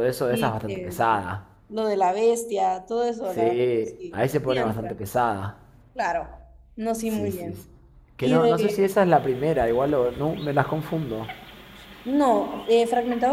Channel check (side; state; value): both; identical; correlation 1.00